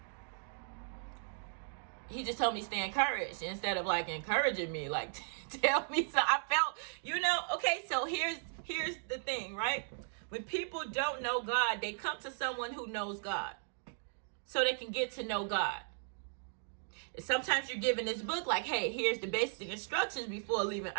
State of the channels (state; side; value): silent; left; digital silence